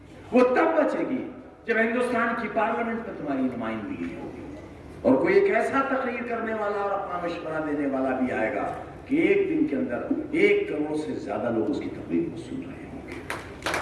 وہ تب بچے گی جب ہندوستان کی پارلیمنٹ میں تمہاری نمائندگی ہوگی، اور کوئی ایک ایسا تقریر کرنے والا اور اپنا مشورہ دینے والا بھی آئے گا کہ ایک دن کے اندر 1 کروڑ سے زیادہ لوگ اس کی تقریر کو سن رہے ہوں گے،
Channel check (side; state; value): both; identical; correlation 1.00